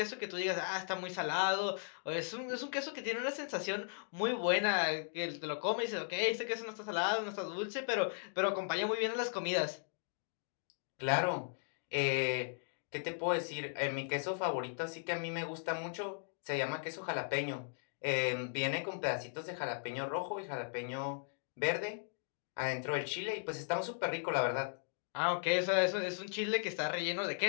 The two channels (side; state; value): right; silent; digital silence